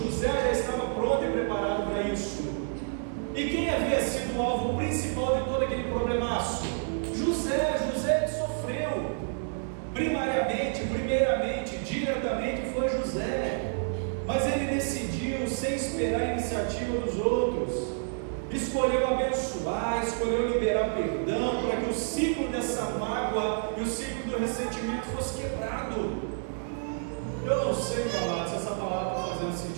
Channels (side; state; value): left; silent; digital silence